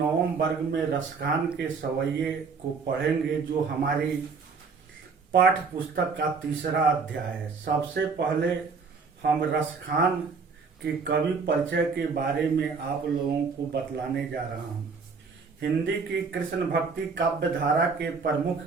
वर्ग में रसखान के सवैये को पढ़ेंगे, जो हमारी पाठ्य पुस्तक का तीसरा अध्याय है। सबसे पहले हम रसखान के कवि परिचय के बारे में आप लोगों को बतलाने जा रहा हूँ। हिंदी की कृष्ण भक्ति काव्य धारा के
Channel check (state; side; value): quieter; left; 5.0 dB